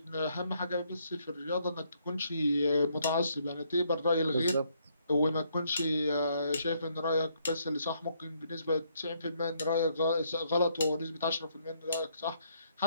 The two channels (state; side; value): inverted; both; correlation -0.71